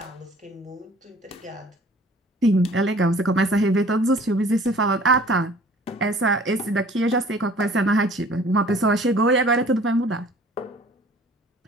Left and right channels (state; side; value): normal; both; correlation 0.51